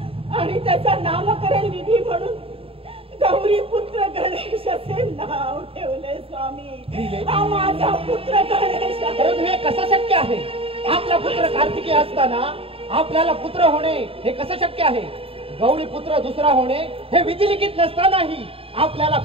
आणि त्याचा नामकरण विधी म्हणून गौरी पुत्र गणेश असे नाव ठेवले स्वामी. हा माझा पुत्र गणेश आहे. परंतु हे कसं शक्य आहे? आपला पुत्र कार्तिकी असताना आपल्याला पुत्र होणे हे कसं शक्य आहे? गौरी पुत्र दुसरा होणे हे विधिलिखित नसतानाही आपल्याला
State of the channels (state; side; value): late; left; 0.27 ms